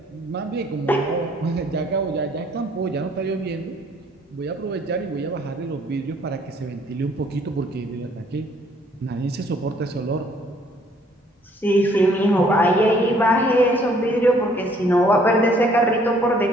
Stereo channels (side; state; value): both; normal; correlation 0.61